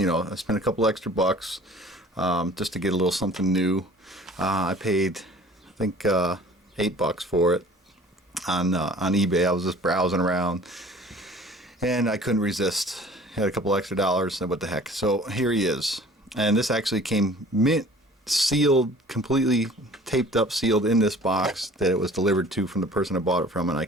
spent a couple extra bucks just to get a little something new. I paid, I think, $8 for it on eBay. I was just browsing around, and I couldn't resist. Had a couple extra dollars, and what the heck. So here he is. And this actually came mint sealed, completely taped up, sealed in this box that it was delivered to from the person I bought it from. And I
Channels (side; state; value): both; normal; correlation 0.48